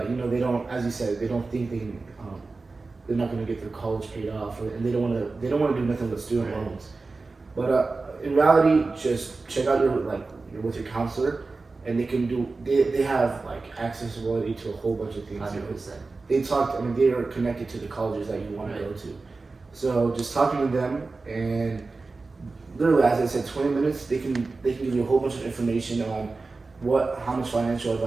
they don't, as you said, they don't think they're not going to get their college paid off, and they don't want to do nothing with student loans. But in reality, just check out your with your counselor, and they have like accessibility to a whole bunch of things. 100%. They are connected to the colleges that you want to go to. So just talking to them, and literally, as I said, 20 minutes, they can give you a whole bunch of information on how much financial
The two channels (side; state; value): left; quieter; 3.8 dB